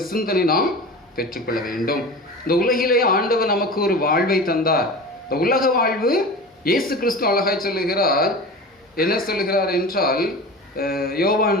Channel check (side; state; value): both; normal; correlation 0.32